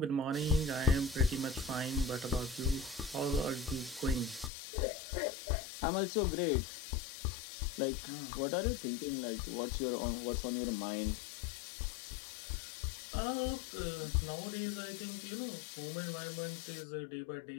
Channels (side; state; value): right; drops out; at 4.5 s